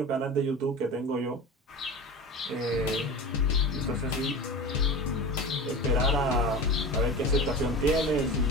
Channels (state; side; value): normal; both; correlation 0.31